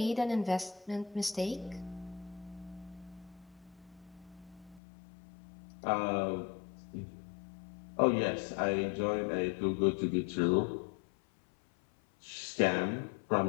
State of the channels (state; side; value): drops out; right; at 4.8 s